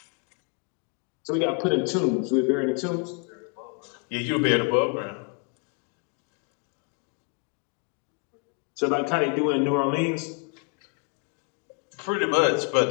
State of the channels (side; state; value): right; quieter; 35.7 dB